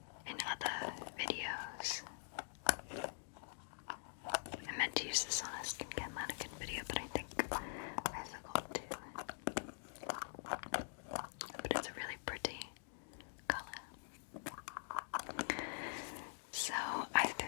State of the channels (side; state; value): right; silent; digital silence